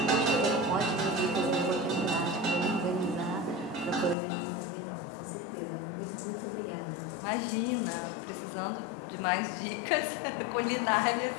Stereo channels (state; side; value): drops out; right; at 4.2 s